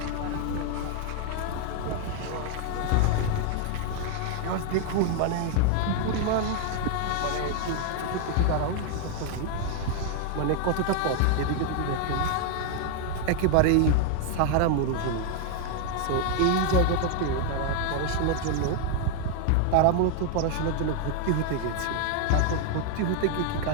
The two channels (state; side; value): different; both; correlation 0.00